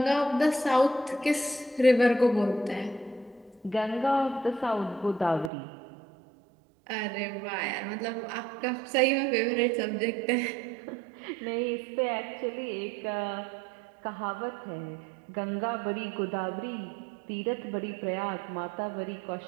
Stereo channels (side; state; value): left; drops out; at 5.5 s